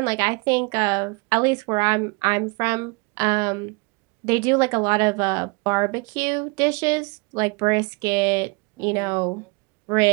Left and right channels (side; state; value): left; quieter; 29.5 dB